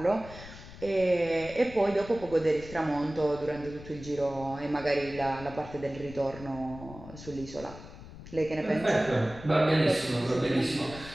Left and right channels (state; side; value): noise; left; rumble, 15 dB below the sound